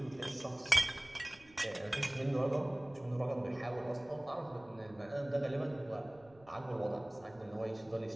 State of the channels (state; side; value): noise; right; rumble, 26 dB below the sound